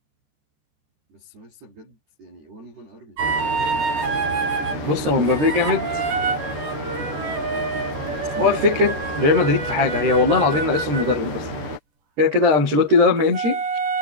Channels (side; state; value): left; late; 13 ms